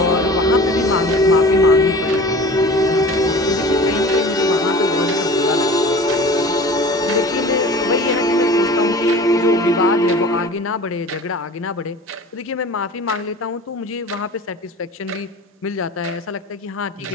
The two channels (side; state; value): both; normal; correlation 0.40